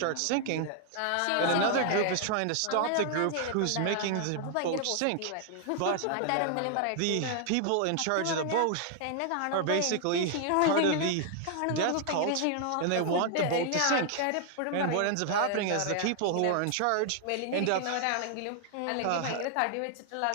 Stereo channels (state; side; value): different; both; correlation 0.00